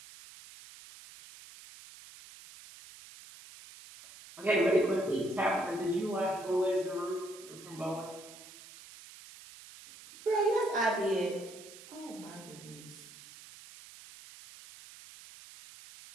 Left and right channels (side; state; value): right; noise; hiss, 18 dB below the sound